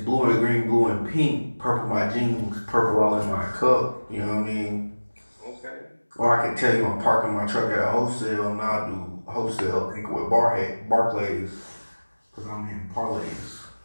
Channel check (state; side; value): inverted; both; correlation -1.00